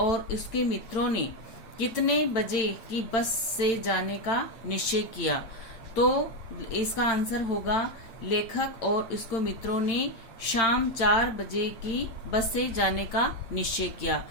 उसके मित्रों ने कितने बजे की बस से जाने का निश्चय किया। तो इसका आंसर होगा लेखक और उसके मित्रों ने शाम 4 बजे की बस से जाने का निश्चय किया।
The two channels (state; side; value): late; right; 8.9 ms